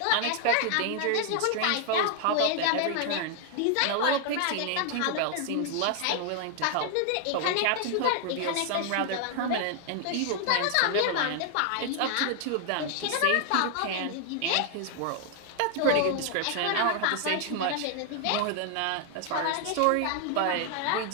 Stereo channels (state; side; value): different; both; correlation 0.00